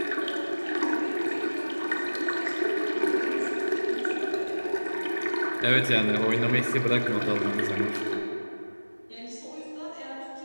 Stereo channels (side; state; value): both; inverted; correlation -1.00